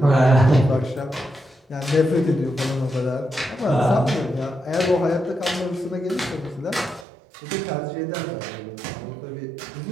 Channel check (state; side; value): drops out; left; at 7.1 s